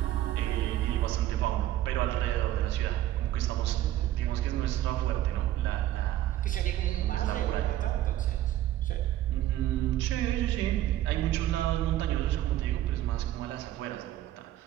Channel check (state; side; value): quieter; left; 13.4 dB